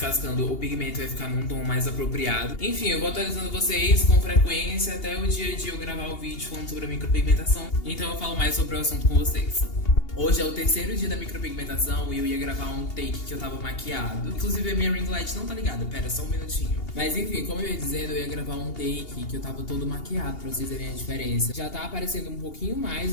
o pigmento vai ficar num tom mais apropriado. Enfim, eu vou atualizando vocês com frequência até o dia de eu gravar o vídeo falando sobre a micropigmentação. Então eu falo mais sobre o assunto com vocês. Hoje é o 3º dia da micropigmentação e eu ia gravar um take que eu tava maquiado. Inclusive a minha ring light não tá ligada, pera, só um minutinho. Mas enfim, como eu ia dizendo, eu ia gravar um take que eu tava todo maquiado pra vocês verem a diferença. Já tá aparecendo um pouquinho mais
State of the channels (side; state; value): right; late; 2.8 ms